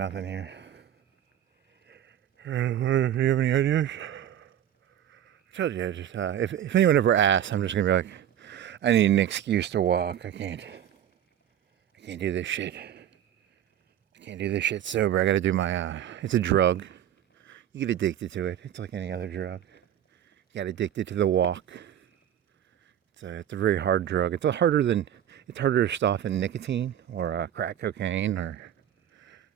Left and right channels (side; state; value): left; quieter; 10.6 dB